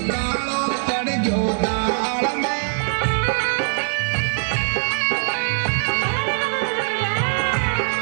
कालो पड़ गयो दाल में।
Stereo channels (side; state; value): left; silent; 56 dB below the other